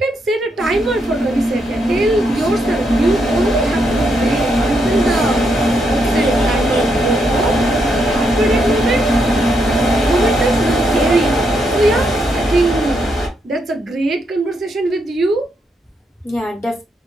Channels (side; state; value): both; normal; correlation 0.79